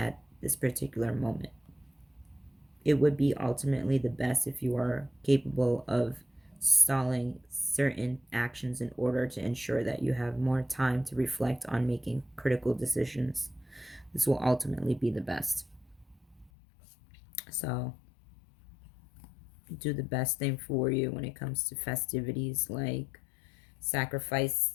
this particular moment. It would be ultimately the best if you are capable of stalling certain actions in order to ensure that you have more time to reflect on making critical decisions. This will ultimately be the best. So, do the best thing for you when it comes to festivities like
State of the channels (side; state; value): right; drops out; at 16.5 s